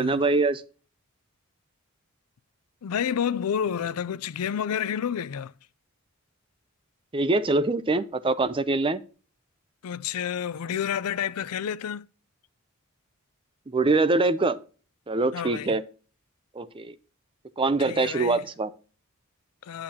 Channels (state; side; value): normal; both; correlation 0.30